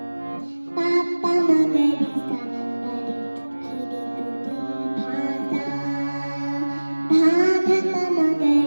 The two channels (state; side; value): inverted; both; correlation -1.00